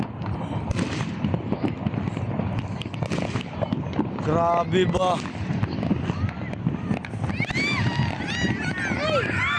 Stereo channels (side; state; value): both; identical; correlation 1.00